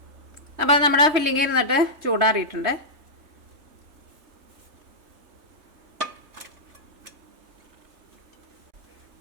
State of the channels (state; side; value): late; left; 3.2 ms